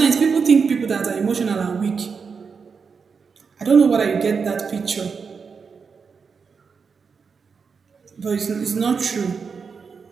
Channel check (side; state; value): left; quieter; 5.5 dB